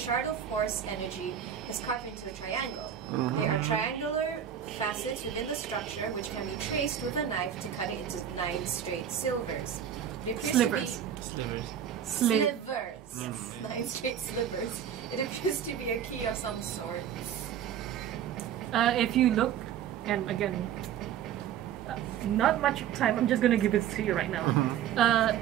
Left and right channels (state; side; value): quieter; left; 9.4 dB